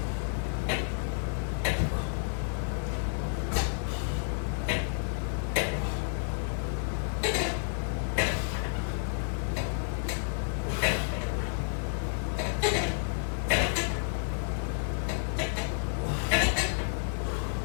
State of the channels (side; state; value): right; silent; 57 dB below the other